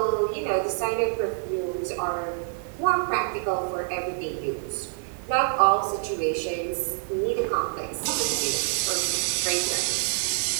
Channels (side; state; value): left; silent; digital silence